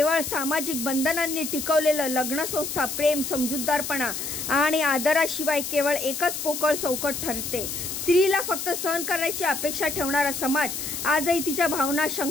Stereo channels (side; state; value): left; noise; hiss, 5 dB below the sound